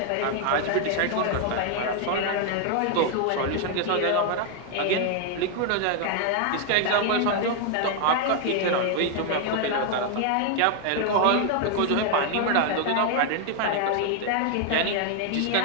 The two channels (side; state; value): both; different; correlation 0.00